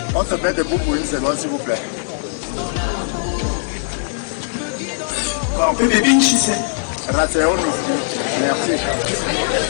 on se met debout pour une seconde, s'il vous plaît.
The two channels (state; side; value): silent; right; digital silence